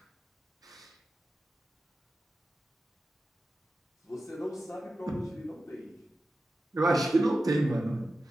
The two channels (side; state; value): both; normal; correlation 0.93